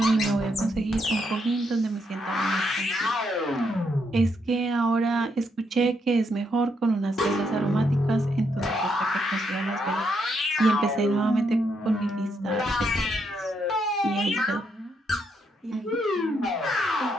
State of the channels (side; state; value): both; normal; correlation 0.77